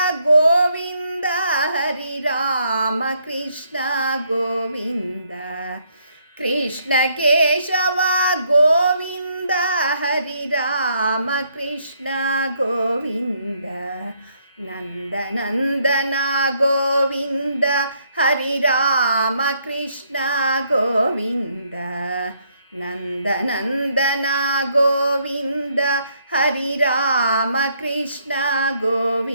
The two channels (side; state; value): both; inverted; correlation -0.71